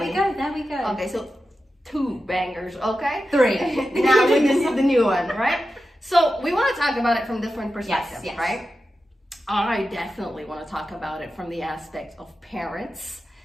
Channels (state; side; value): normal; both; correlation 0.92